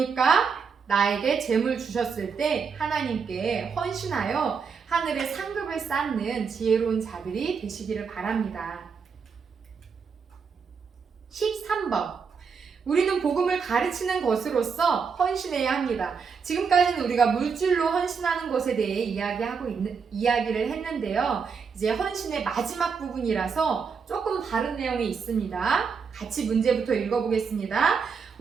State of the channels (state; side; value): quieter; left; 5.8 dB